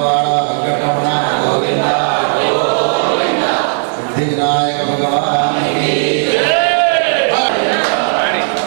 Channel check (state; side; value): silent; left; digital silence